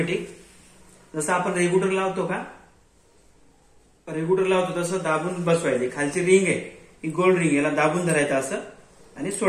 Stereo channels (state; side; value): identical; both; correlation 1.00